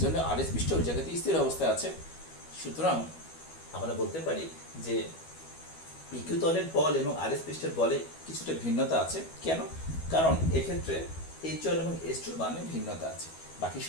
জন্য RS পৃষ্ঠ ওই জায়গাতে স্থির অবস্থায় আছে। সুতরাং আমরা বলতে পারি যে PQ তলের বল এবং RS পৃষ্ঠের বলে কিছুটা ভিন্নতা আছে। কেন? কারণ এক্ষেত্রে H1 এবং H2 মানে ভিন্নতা আছে, বাকি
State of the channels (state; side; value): late; right; 12 ms